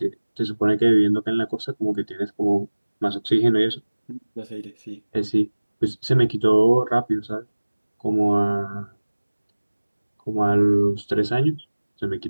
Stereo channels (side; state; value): both; inverted; correlation -1.00